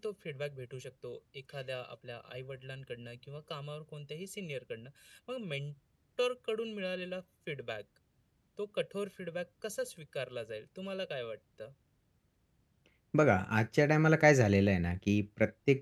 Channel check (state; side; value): identical; both; correlation 1.00